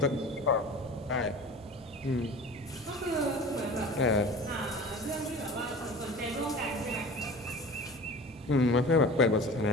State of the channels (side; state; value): both; normal; correlation 0.38